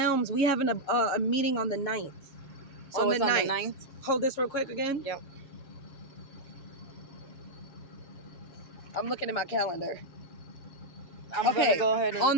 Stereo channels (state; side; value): late; right; 7.2 ms